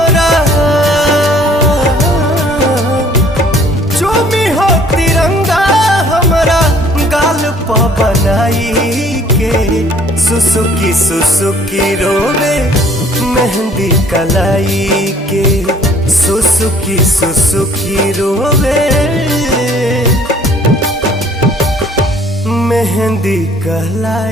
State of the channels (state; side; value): normal; both; correlation 0.57